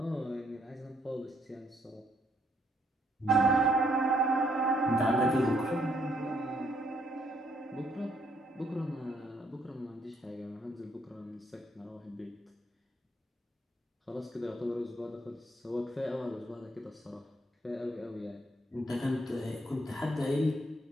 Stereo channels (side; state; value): both; normal; correlation 0.71